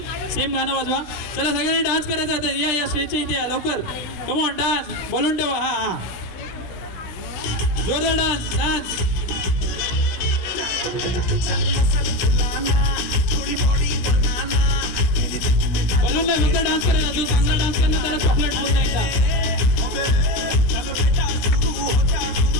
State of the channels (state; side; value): late; right; 17 ms